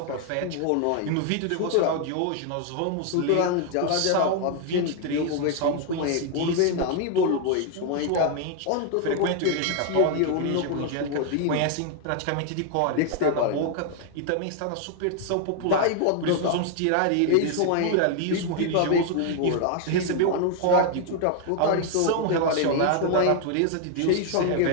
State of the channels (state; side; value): different; both; correlation 0.00